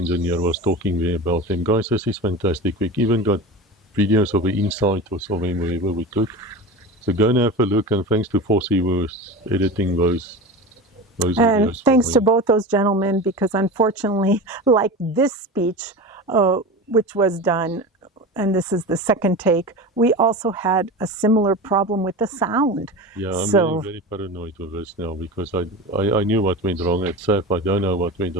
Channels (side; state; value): both; normal; correlation 0.29